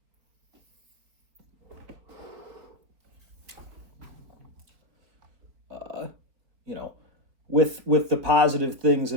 You know, with the positive things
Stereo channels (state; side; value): late; left; 4.4 ms